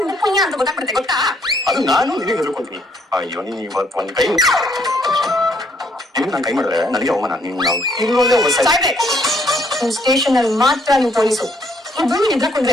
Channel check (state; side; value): normal; both; correlation 0.68